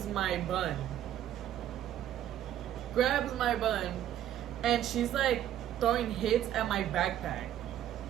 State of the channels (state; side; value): quieter; left; 11.6 dB